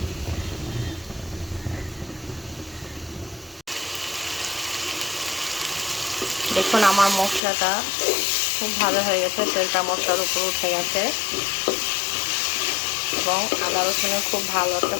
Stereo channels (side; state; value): right; drops out; at 7.4 s